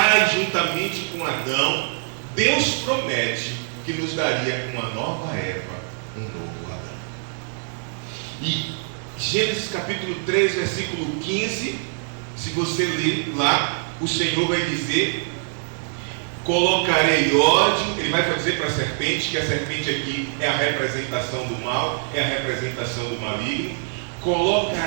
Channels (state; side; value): silent; left; 63 dB below the other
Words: juntamente com Adão, Deus promete que nos daria uma nova Eva, um novo Adão. E Gênesis capítulo 3, versículo 15, se você ler lá, o Senhor vai dizer: colocarei ódio. Ele vai dizer para a serpente, que a serpente aqui é a representação do mal, é a representação do maligno.